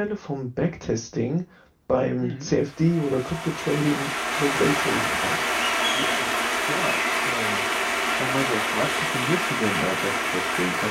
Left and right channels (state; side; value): identical; both; correlation 1.00